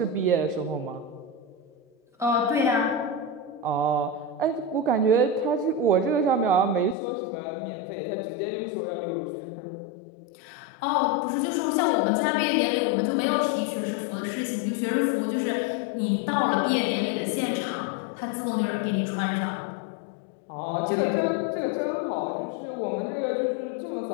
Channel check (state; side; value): drops out; right; at 7.0 s